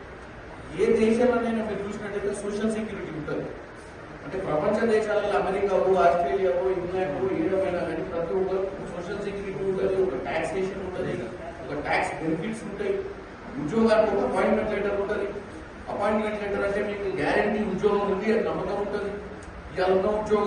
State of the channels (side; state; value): both; identical; correlation 1.00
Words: ఏ దేశంలోనైనా మీరు చూసినట్టయితే సోషల్ సెక్యూరిటీ ఉంటుంది. అంటే ప్రపంచ దేశాలలో అమెరికావో, ఆస్ట్రేలియావో, ఇంగ్లాండ్ ఏమైనా కానీ ప్రతి ఒక్కరు సోషల్ సెక్యూరిటీ ఉంటుంది, ఒక టాక్సేషన్ ఉంటుంది, ఒక ట్యాక్స్ బెనిఫిట్స్ ఉంటాయి. ఉద్యోగానికి ఒక అపాయింట్మెంట్ లెటర్ ఉంటుంది. అపాయింట్మెంట్ లెటర్ అంటే మీకు గ్యారంటీ ఉద్యోగం ఉంది అని నమ్మకం ఉంటుంది. ఇవాళ ఉన్న